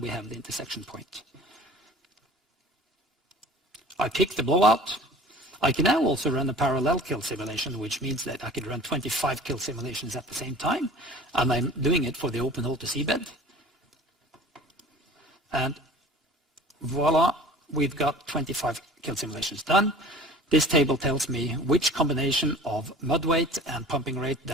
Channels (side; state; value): both; normal; correlation 0.44